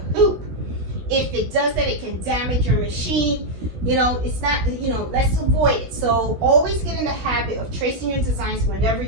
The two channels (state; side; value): late; left; 16 ms